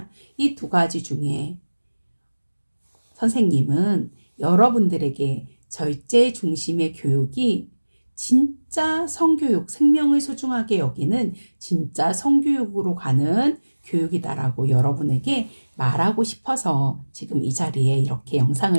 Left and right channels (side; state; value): both; inverted; correlation -1.00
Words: 이 두 가지 중에 선생님은 여러분들에게 절제 중심의 교육이 진짜 성교육, 생명을 소중하게 여기는 진짜 성교육으로 가는 교육이다라고 여러분에게 말하고 싶어서 지금 이 자리에 이렇게